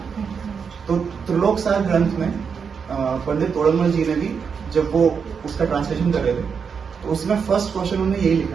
तो त्रिलोक सार ग्रंथ में पंडित तोड़रमल जी ने भी जब वो उसका ट्रांसलेशन कर रहे थे तो उसमें फर्स्ट क्वेश्चन उन्होंने यही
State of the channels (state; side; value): quieter; left; 6.2 dB